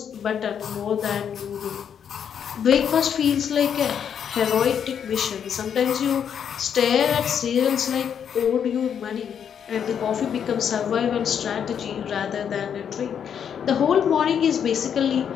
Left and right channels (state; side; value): quieter; right; 8.1 dB